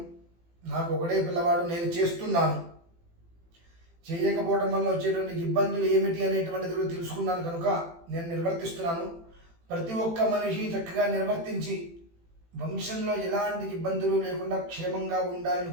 నాకు ఒకడే పిల్లవాడు, నేను చేస్తున్నాను. చేయకపోవడం వల్ల వచ్చేటువంటి ఇబ్బందులు ఏమిటి అనేటువంటిది కూడా తెలుసుకున్నాను కనుక నేను నిర్వర్తిస్తున్నాను. ప్రతి ఒక్క మనిషి చక్కగా నిర్వర్తించి వంశంలో ఎలాంటి ఇబ్బందులు లేకుండా క్షేమంగా ఉండాలని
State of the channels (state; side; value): late; left; 18 ms